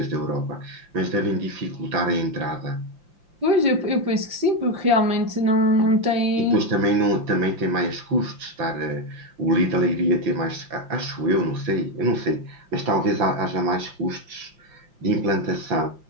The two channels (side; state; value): left; late; 5.7 ms